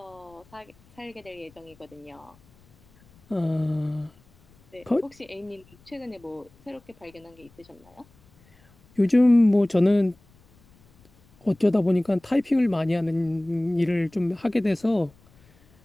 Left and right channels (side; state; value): left; noise; rumble, 30 dB below the sound